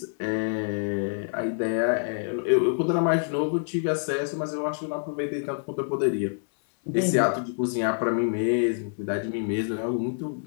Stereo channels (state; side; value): silent; right; 60 dB below the other